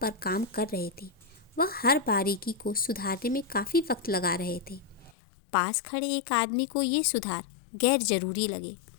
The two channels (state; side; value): drops out; right; at 5.2 s